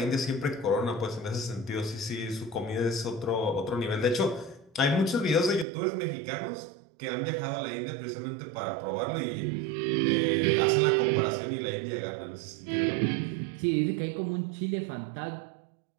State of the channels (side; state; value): left; drops out; at 5.7 s